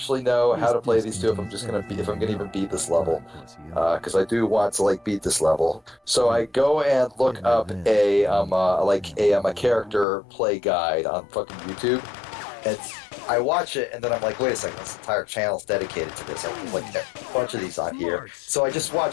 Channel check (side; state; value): right; drops out; at 10.1 s